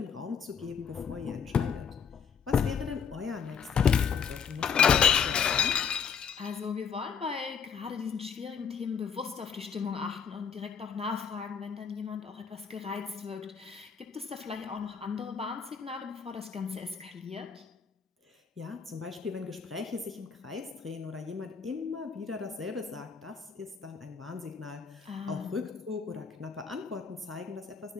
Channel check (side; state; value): right; quieter; 6.5 dB